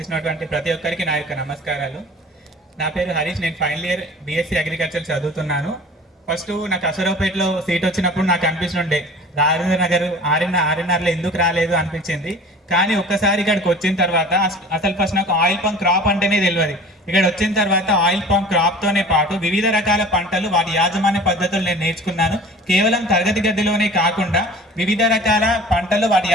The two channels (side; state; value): both; normal; correlation 0.43